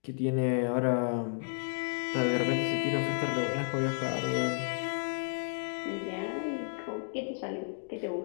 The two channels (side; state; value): right; silent; digital silence